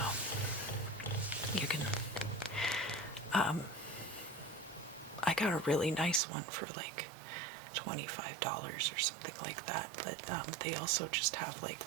you can, I got a really nice one for like $25 or something like that, but they also just have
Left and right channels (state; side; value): drops out; left; at 6.2 s